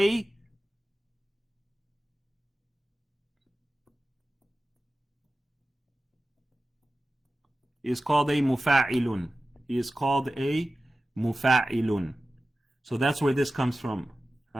mufa'ilun. He is called a mufa'ilun. So that's where this comes from.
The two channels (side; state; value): both; normal; correlation 0.95